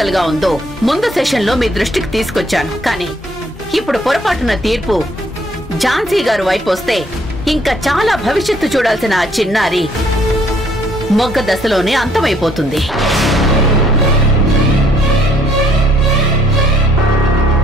గా ఉందో ముందు సెషన్ లో మీ దృష్టికి తీసుకొచ్చాను. కానీ ఇప్పుడు పొరపాటున తీర్పు ఝాన్సీ గారు వైపు వస్తే ఇంకా చాలా భవిష్యత్తు చూడాల్సిన ఆ చిన్నారి మొగ్గ దశలోనే అంతమైపోతుంది.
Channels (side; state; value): both; normal; correlation 0.64